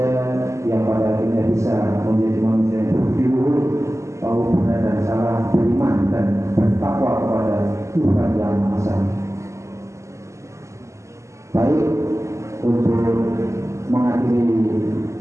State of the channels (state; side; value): late; left; 0.14 ms